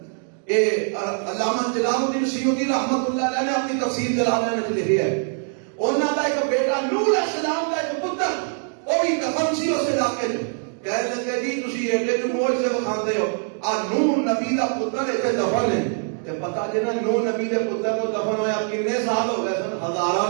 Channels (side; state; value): left; silent; 56 dB below the other